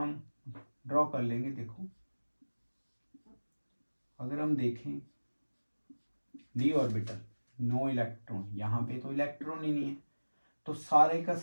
ड्रॉ कर लेंगे। देखो, अगर हम देखें d ऑर्बिटल, नो इलेक्ट्रॉन, यहाँ पे तो इलेक्ट्रॉन ही नहीं है, तो सारे का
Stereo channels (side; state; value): both; inverted; correlation -1.00